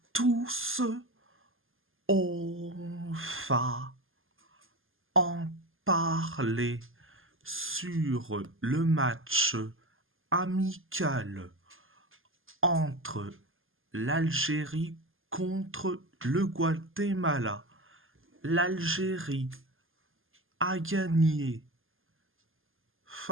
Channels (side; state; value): left; late; 0.59 ms